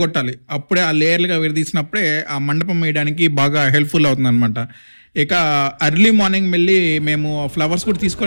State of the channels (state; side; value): inverted; both; correlation -1.00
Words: అప్పుడే ఆ లేయర్లుగా విడదీసినప్పుడే ఆ మండపం వేయడానికి బాగా హెల్ప్ఫుల్ అవుతుంది అనమాట. ఇక అర్లీ మార్నింగ్ వెళ్ళి మేము ఫ్లవర్స్ కూడా